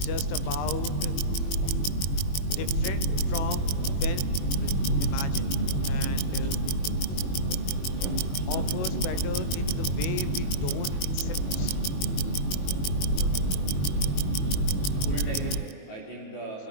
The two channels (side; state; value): right; late; 22 ms